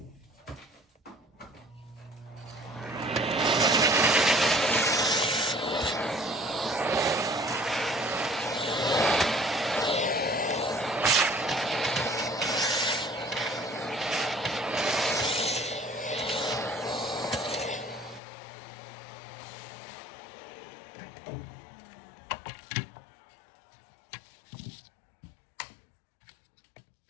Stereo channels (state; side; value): drops out; right; at 18.2 s